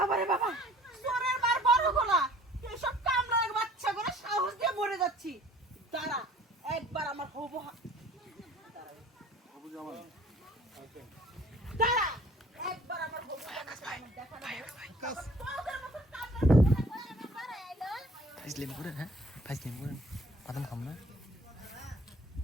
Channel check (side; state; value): both; normal; correlation 0.52